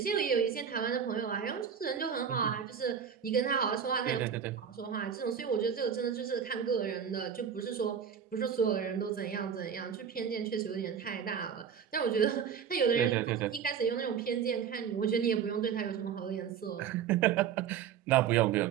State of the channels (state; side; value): quieter; left; 7.8 dB